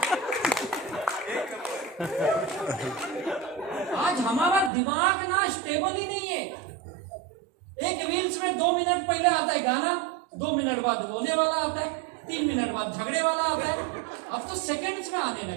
आज हमारा दिमाग ना स्टेबल ही नहीं है। एक रील्स में 2 मिनट पहले आता है गाना, 2 मिनट बाद रोने वाला आता है, 3 मिनट बाद झगड़े वाला आता है। अब तो सेकंड्स में आने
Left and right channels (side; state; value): left; drops out; at 4.7 s